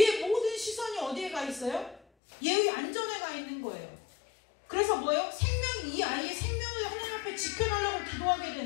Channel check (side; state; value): right; drops out; at 2.0 s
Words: 어디에 가 있어요? 얘의 안전에 가 있는 거예요. 그래서 뭐예요? 이 아이의 생명을 하나님 앞에 지켜달라고 기도하게